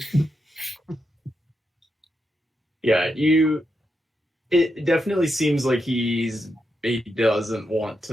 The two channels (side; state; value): both; normal; correlation 0.85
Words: Yeah, it definitely seems like he doesn't want